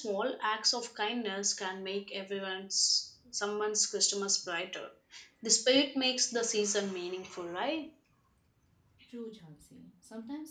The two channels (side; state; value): both; identical; correlation 1.00